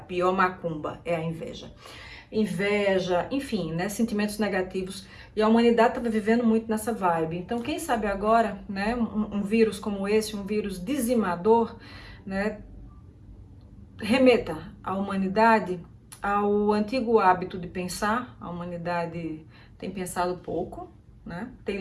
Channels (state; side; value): identical; both; correlation 1.00